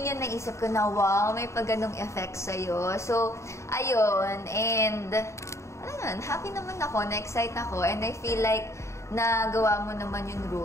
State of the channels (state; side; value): late; right; 0.14 ms